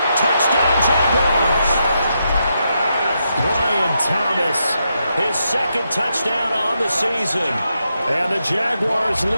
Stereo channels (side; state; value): both; inverted; correlation -0.83